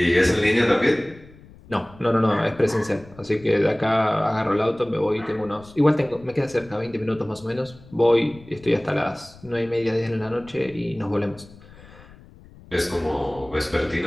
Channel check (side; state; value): left; noise; rumble, 22 dB below the sound